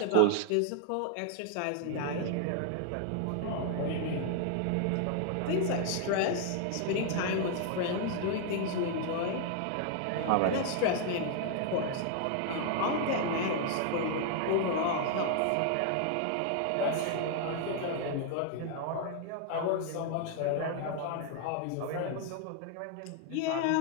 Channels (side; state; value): both; different; correlation 0.00